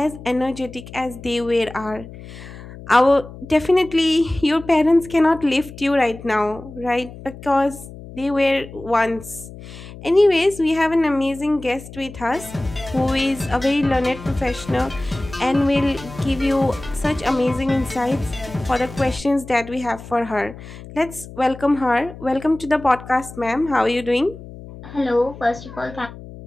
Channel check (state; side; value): noise; left; hum, 15 dB below the sound